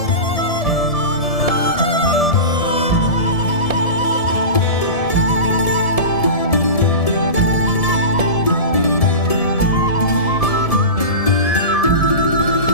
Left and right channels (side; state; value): right; late; 1.7 ms